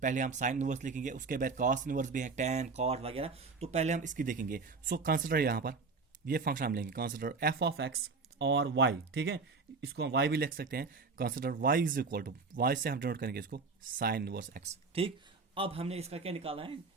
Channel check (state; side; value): quieter; left; 4.4 dB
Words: हम साइन इनवर्स लिखेंगे, उसके बाद कॉस इनवर्स भी है, tan cot वगैरह। तो पहले हम इसकी देखेंगे। सो कंसिडर यहाँ पर ये फंक्शन हम लेंगे, कंसिडर f ऑफ x और y, ठीक है। इसको हम y भी लिख सकते हैं। Consider y is equal to, y से हम डिनोट करेंगे इसको साइन इनवर्स x, ठीक। अब हमने इसका क्या निकालना है,